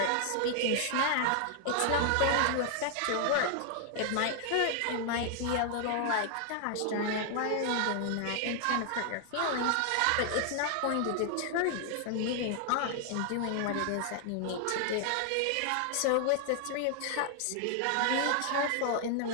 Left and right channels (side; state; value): both; different; correlation 0.00